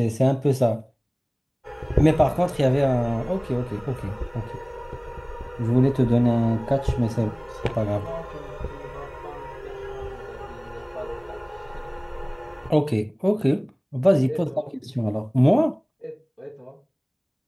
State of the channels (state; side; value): identical; both; correlation 1.00